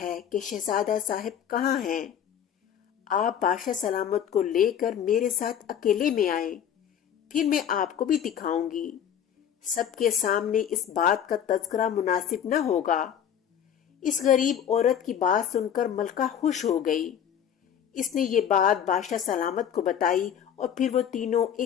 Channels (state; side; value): quieter; right; 9.1 dB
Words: ہے کہ شہزادہ صاحب کہاں ہیں۔ آپ بادشاہ سلامت کو لے کر میرے ساتھ اکیلے میں آئیں، پھر میں آپ کو بھی دکھاؤں گی۔ سب کے سامنے اس بات کا تذکرہ مناسب نہ ہوگا۔ اس غریب عورت کی بات سن کر ملکہ خوش ہو گئی۔ اس نے یہ بات بادشاہ سلامت کو بتائی اور پھر وہ تینوں